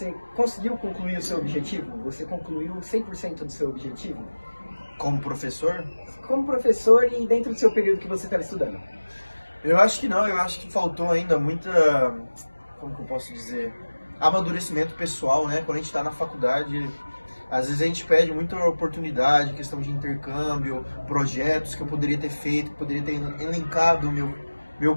conseguiu concluir o seu objetivo? Você concluiu 100% do seu objetivo? Como professor? Como professor e dentro do seu período que você estava estudando? Eu acho que não, eu acho que faltou ainda muita, como que eu posso dizer, amadurecimento pessoal, né? Quando a gente está na faculdade, às vezes a gente perde muita oportunidade, questão de intercâmbio, projetos que eu poderia ter feito, que poderia ter elencado o meu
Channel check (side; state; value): both; inverted; correlation -1.00